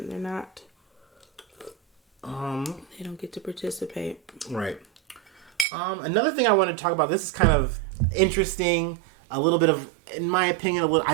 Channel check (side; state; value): left; drops out; at 5.7 s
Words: They're not. They don't get to participate. Right. Another thing I want to talk about. This is kind of interesting. A little bit of, in my opinion,